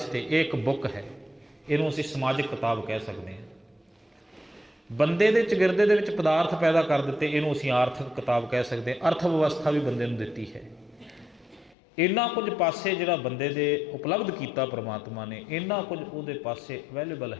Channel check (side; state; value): right; drops out; at 11.8 s